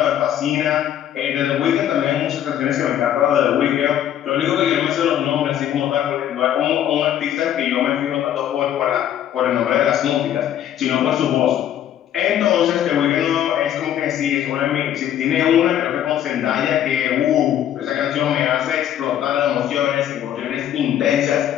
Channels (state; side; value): quieter; right; 10.8 dB